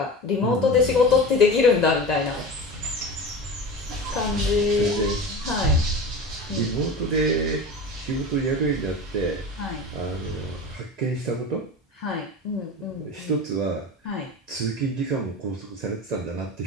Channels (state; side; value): normal; both; correlation 0.31